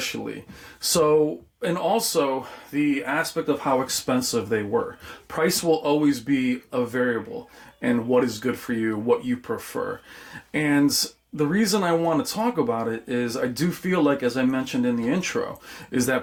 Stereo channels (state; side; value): identical; both; correlation 1.00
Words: So, and also the aspect of how expensive they were. Price will always be a variable, and what is good for you, what you prefer. And the reason I want to talk about it is I do feel like, as I mentioned in the intro, is